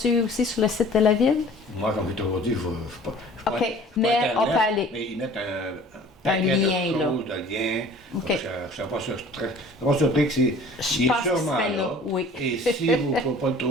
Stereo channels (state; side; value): normal; both; correlation 0.48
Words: aussi sur le site de la ville? Moi, comme je t'ai toujours dit, je ne pas. OK, mais Internet, on peut aller. Mais ils mettent un lien, de là. De liens. OK. Je ne suis pas surpris que c'est sûrement là. Oui. Et si vous ne pouvez pas le